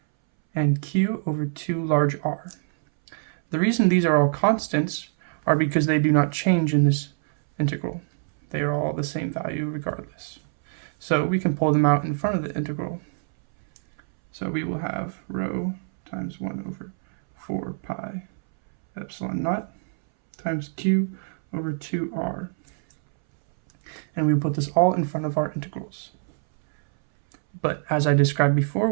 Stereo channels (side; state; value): left; silent; 62 dB below the other